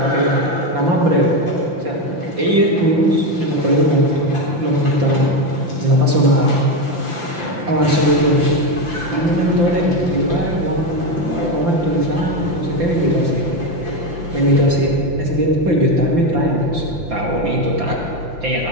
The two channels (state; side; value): late; left; 5.8 ms